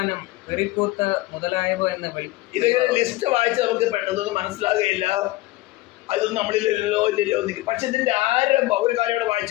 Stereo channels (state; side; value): quieter; right; 18.7 dB